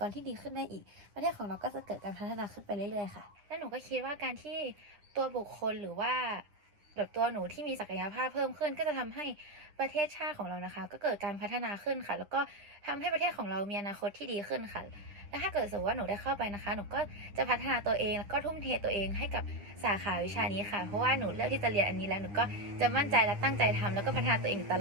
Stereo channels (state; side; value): late; left; 10 ms